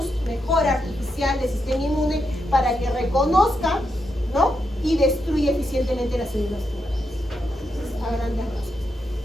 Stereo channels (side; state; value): both; normal; correlation 0.83